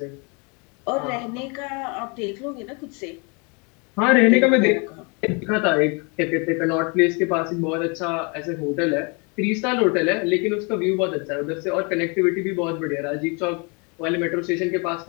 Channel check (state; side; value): quieter; right; 32.6 dB